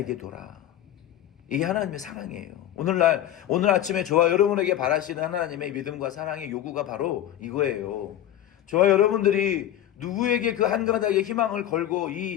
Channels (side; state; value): right; quieter; 12.0 dB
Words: 둬라. 이게 하나님의 사랑이에요. 오늘 아침에 저와 여러분에게 바라시는 하나님의 믿음과 사랑의 요구가 바로 이거예요. 저와 여러분들이 누구에게 그 한 가닥의 희망을 걸고